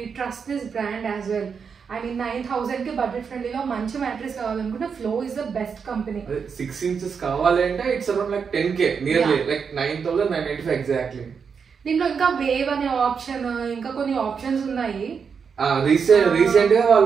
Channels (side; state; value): left; quieter; 6.2 dB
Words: trust this brand as well. I mean 9,000 కి budget ఫ్రెండ్లీలో మంచి mattress కావాలనుకుంటే flow is the best company. 6 inches కావాలి అంటే it's around like 10k nearly like 9,995 exactly. దీంట్లో ఇంకా వేవ్ అనే ఆప్షన్, ఇంకా కొన్ని ఆప్షన్స్ ఉన్నాయి. రీసెంట్ గా